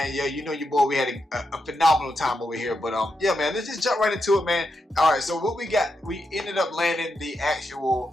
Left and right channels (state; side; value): normal; both; correlation 0.84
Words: yeah, you know your boy, we had a phenomenal time over here, but yeah, man, let's just jump right into it, man. All right, so what we got, we ended up landing the